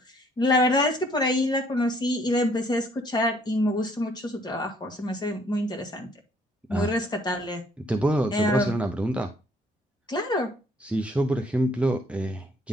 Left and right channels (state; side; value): normal; both; correlation 0.63